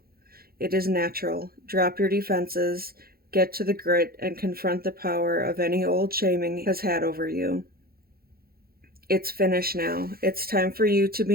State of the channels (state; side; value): late; left; 0.44 ms